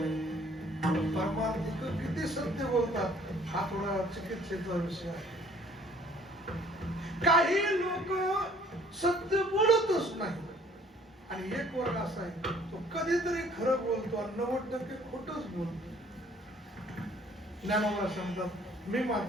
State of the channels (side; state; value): both; normal; correlation 0.57